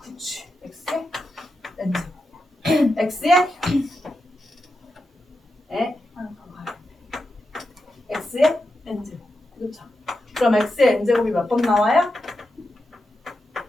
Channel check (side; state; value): both; normal; correlation 0.88